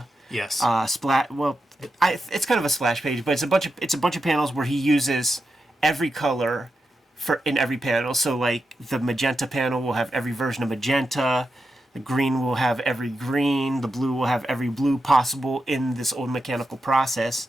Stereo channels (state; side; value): normal; both; correlation 0.88